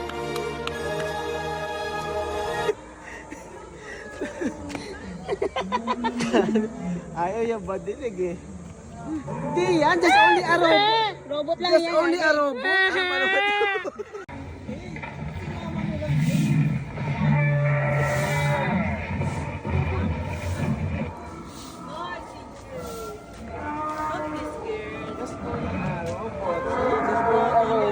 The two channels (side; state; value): both; identical; correlation 1.00